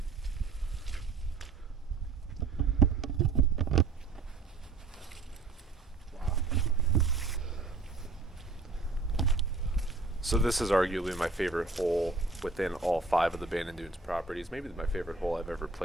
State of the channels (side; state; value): left; quieter; 4.0 dB